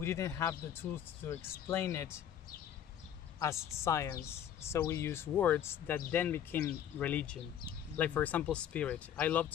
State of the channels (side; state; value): right; quieter; 9.7 dB